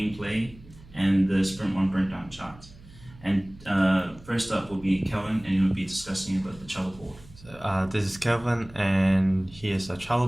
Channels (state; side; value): noise; right; hum, 22 dB below the sound